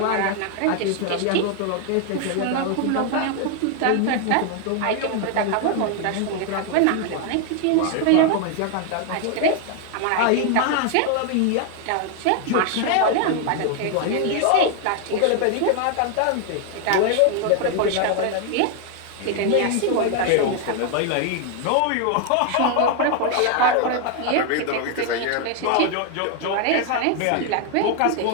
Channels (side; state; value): both; different; correlation 0.00